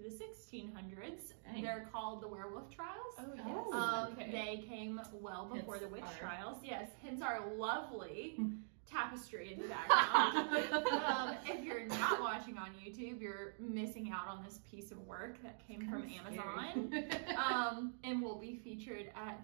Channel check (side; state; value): left; silent; digital silence